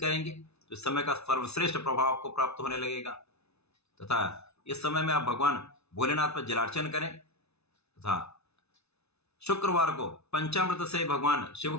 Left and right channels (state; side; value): late; right; 0.80 ms